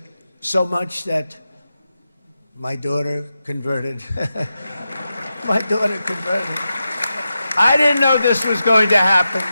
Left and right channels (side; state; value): both; inverted; correlation -0.90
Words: so much that my daughter converted. My daughter converted. I didn't know this was going to happen.